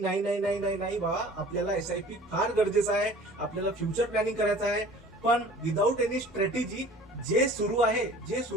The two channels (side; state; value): both; normal; correlation 0.46